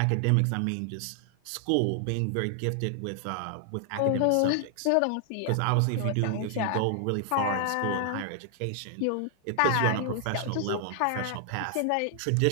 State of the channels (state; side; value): different; both; correlation 0.00